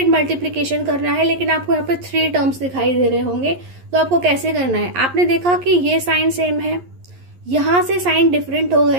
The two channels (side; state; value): left; late; 11 ms